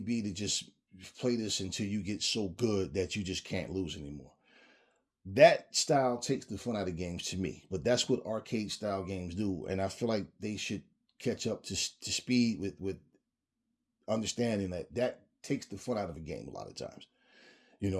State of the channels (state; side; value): identical; both; correlation 1.00